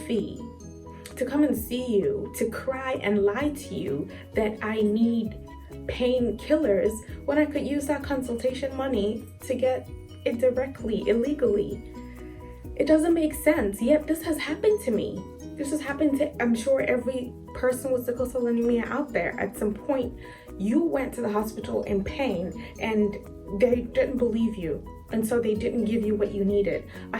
to come and see you, to cry and lie to you that I need painkillers when I could use that consultation money to get it directly, illegally? It doesn't make sense. Yet this has happened to me. This has happened to, I'm sure, every person with sickle cell anemia out there. At some point, you went to the hospital in pain and they didn't believe you. And so they didn't give you what you needed. I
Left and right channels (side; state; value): both; identical; correlation 1.00